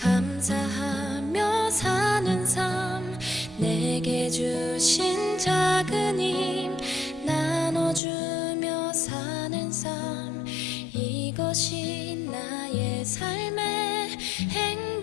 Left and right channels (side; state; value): right; drops out; at 8.0 s